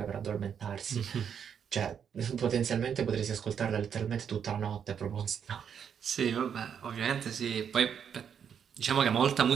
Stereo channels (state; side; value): quieter; left; 7.8 dB